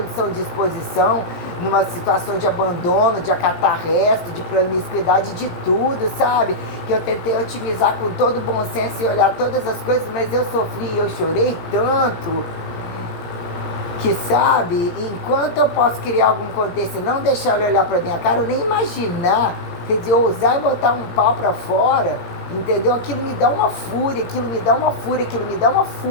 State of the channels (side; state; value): right; late; 17 ms